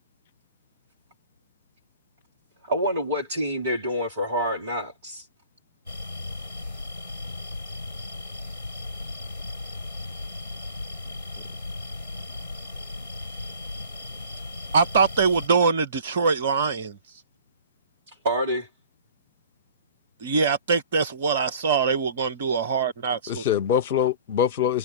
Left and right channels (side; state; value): both; inverted; correlation -0.47